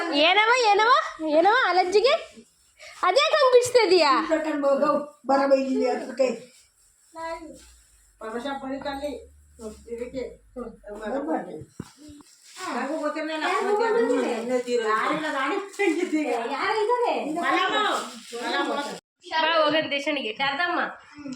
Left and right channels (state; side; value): identical; both; correlation 1.00